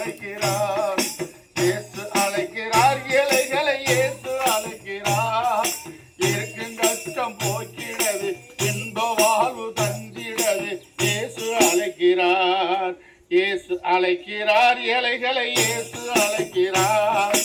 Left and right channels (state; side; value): identical; both; correlation 1.00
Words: இயேசு அழைக்கிறார் ஏழைகளை, இயேசு அழைக்கிறார் இருக்கும் கஷ்டம் போக்கிடவே, இன்ப வாழ்வு தந்திடவே இயேசு அழைக்கிறார், இயேசு அழைக்கிறார் ஏழைகளை, இயேசு அழைக்கிறார்